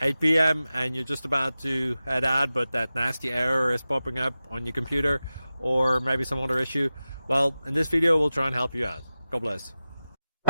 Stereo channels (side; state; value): both; inverted; correlation -0.94